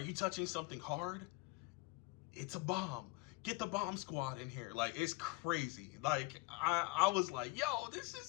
touching something hard? It's a bomb. Get the bomb squad in here. Like, it's crazy. Like, I was like, yo, this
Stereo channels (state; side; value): quieter; right; 23.8 dB